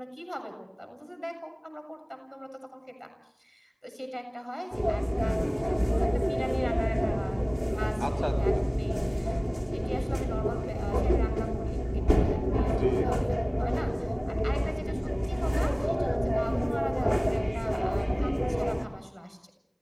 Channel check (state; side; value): identical; both; correlation 1.00